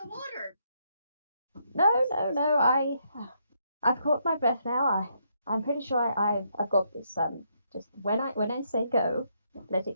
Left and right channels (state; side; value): inverted; both; correlation -0.76